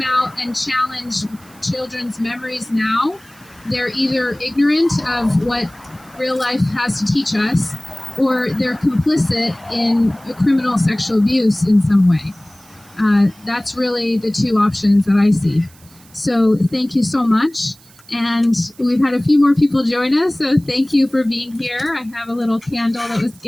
out and challenge children's memories now, they're either ignorant of what real life has to teach us, or they're complicit in a criminal sexual abuse in some way. That's really the two options that I see. So thank you so much. And we've had a few more people join us, so thank you for being here. I have a little candle that was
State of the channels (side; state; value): right; noise; hiss, 26 dB below the sound